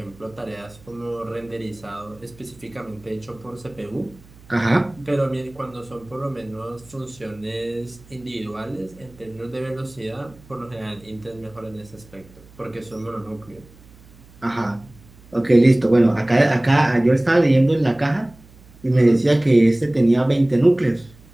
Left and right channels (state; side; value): noise; right; hum, 24 dB below the sound